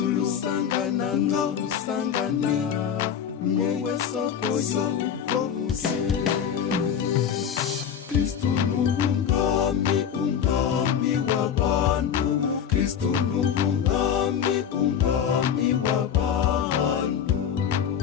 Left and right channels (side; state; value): right; quieter; 8.3 dB